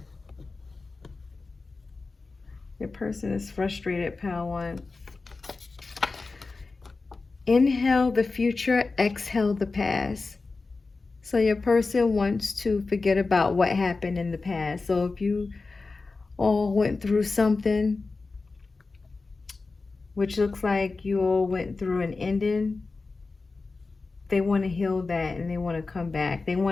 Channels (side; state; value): right; quieter; 3.9 dB